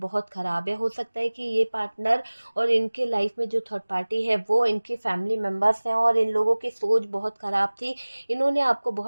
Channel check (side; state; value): both; inverted; correlation -1.00